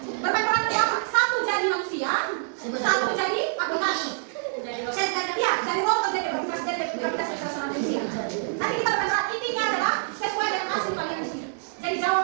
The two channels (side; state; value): left; silent; 57 dB below the other